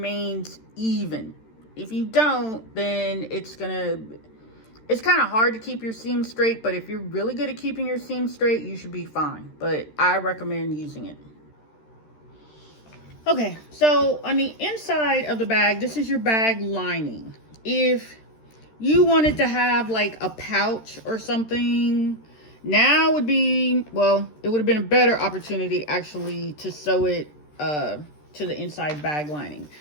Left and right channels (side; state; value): right; late; 13 ms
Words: even. If you don't, then it's kind of hard to keep your seam straight, but if you're really good at keeping your seam straight, you should be fine. But I recommend using it. Okay, so on the inside of the bag, this is your bag lining. If you wanted to have like a pouch or something, now would be, well, it would have been a better opportunity actually to sew it to the inside bag lining.